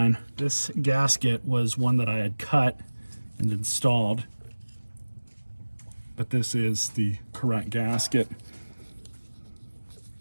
This gasket was one that I had cut and installed, but this is the correct gasket.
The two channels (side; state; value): both; inverted; correlation -1.00